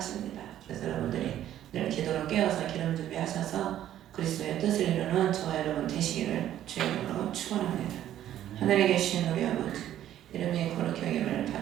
그래서 여러분들이 늘 기도로 깨어서 기름 준비하셔서 그리스도의 뜻을 이루는 저와 여러분 되시기를 주의 이름으로 축원합니다. 하늘에 계신 우리 아버지 이름이 거룩히 여김을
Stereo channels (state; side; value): quieter; left; 11.9 dB